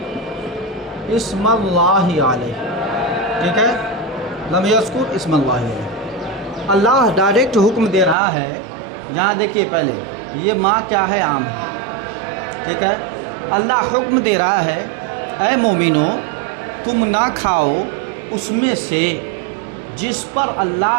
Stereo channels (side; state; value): left; drops out; at 8.2 s